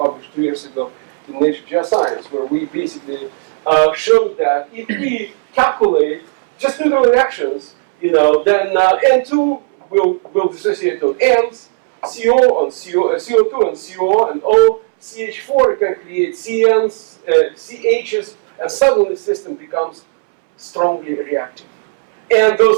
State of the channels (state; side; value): silent; left; 69 dB below the other